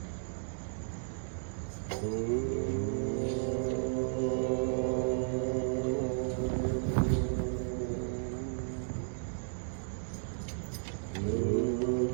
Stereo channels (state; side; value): silent; left; digital silence